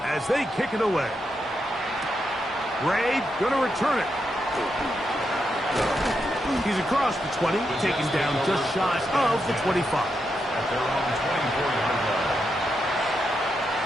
as they kick it away. Ray going to return it. He's across the 20, taken down just shy of the 25. At their own 24-yard line.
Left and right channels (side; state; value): both; normal; correlation 0.84